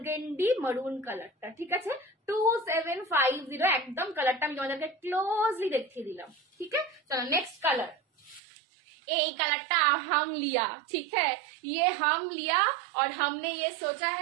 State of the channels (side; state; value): left; drops out; at 8.4 s